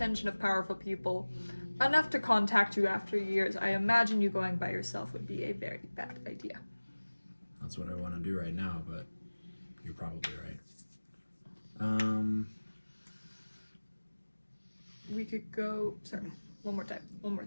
of powerful people enough to contact you after years, I imagine you going by yourself would be a very bad idea. That's what I want to do right now, but you're probably right. We could go. Sorry, one more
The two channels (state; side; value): inverted; both; correlation -1.00